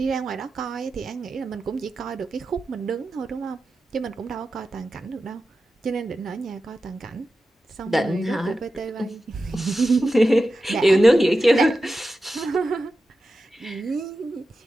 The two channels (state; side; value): normal; both; correlation 0.92